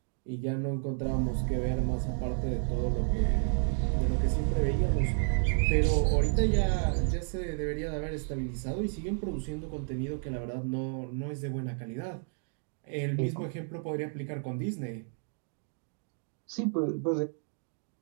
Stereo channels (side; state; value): left; silent; 57 dB below the other